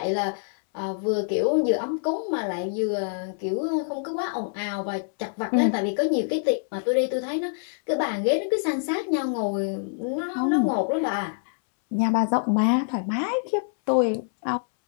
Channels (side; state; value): right; silent; 61 dB below the other